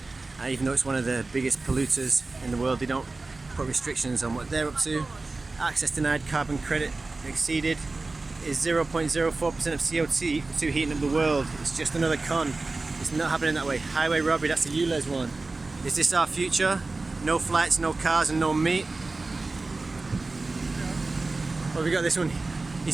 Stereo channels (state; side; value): quieter; left; 3.5 dB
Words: even though it's one of the biggest polluters in the world. They don't put restrictions on what they're up to. Access denied, carbon credit exceeded is 0.04% of CO2 heating up the world. It's just another con. It's not happening that way. Highway robbery, that's the ULEZ one. Is this our future? No flights, no cars and no meat. Well, we got this one.